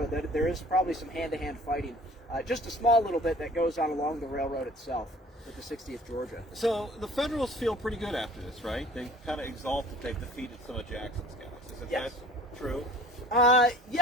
that there is probably some hand-to-hand fighting. Just a small little bit that goes on along the railroad itself with the 60th Georgia. So the Federals feel pretty good after this, right? They kind of exalt that they've defeated some of Jackson's guys. Is that true?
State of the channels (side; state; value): both; normal; correlation 0.49